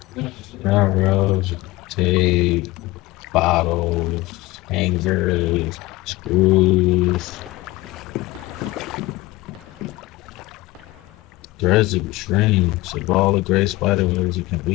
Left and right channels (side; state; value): right; quieter; 19.9 dB